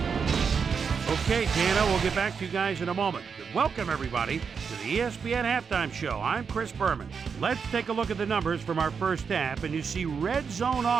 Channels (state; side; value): quieter; left; 6.0 dB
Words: Okay, Dana, we'll get back to you guys in a moment. Welcome, everybody, to the ESPN Halftime Show. I'm Chris Berman. Let's take a look at the numbers from our first half, and you see red zone